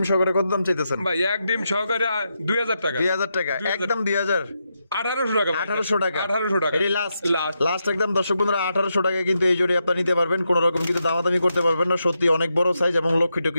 সহকারে কত দাম চাইতেছেন ভাই এক ডিম সহকারে 2000 টাকা। 2000 টাকা 2000 একদম 2000 1800 টাকা ভাই। 1800 টাকা 1800 টাকা। এটাই লাস্ট লাস্ট। লাস্ট একদম দর্শক বন্ধুরা 1800 টাকায় কিন্তু এই জোড়ি আপনারা নিতে পারবেন কোনো রকম কিন্তু দামাদামি করতে পারবেন না সত্যি অনেক বড় সাইজ এবং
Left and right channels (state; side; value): inverted; both; correlation -0.84